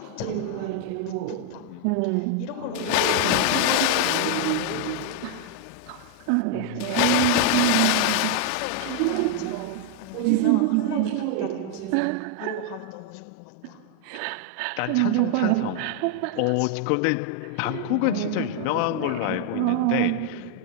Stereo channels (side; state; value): both; different; correlation 0.00